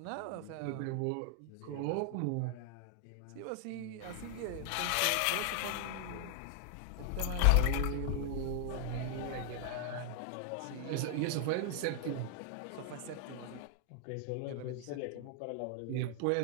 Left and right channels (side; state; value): both; different; correlation 0.00